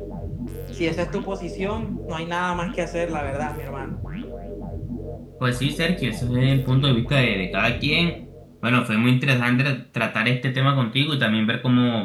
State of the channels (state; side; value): identical; both; correlation 1.00